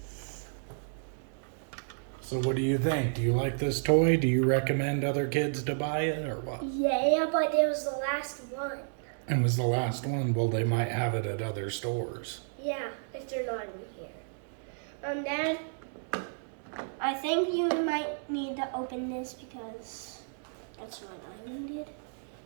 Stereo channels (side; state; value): left; silent; digital silence